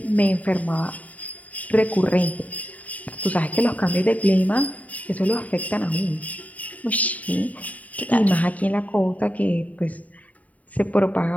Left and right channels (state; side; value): late; right; 0.071 ms